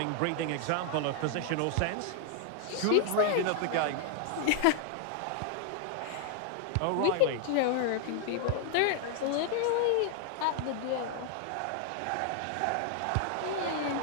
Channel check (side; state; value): both; different; correlation 0.00